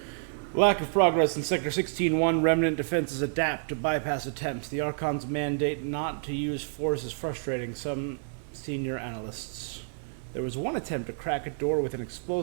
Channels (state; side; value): silent; left; digital silence